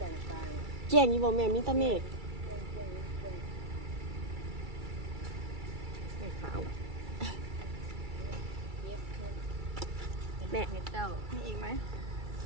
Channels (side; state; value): left; late; 2.3 ms